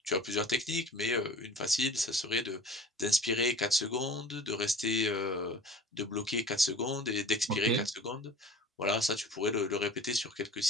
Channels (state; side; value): normal; both; correlation 0.42